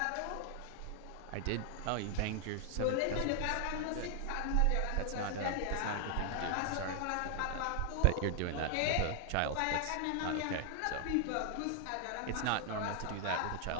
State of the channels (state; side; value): different; both; correlation 0.00